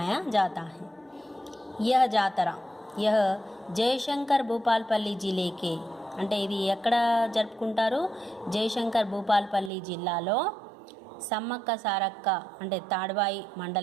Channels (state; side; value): drops out; left; at 9.7 s